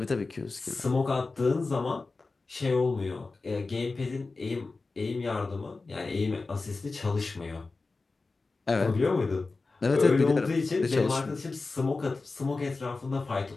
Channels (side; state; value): right; quieter; 3.8 dB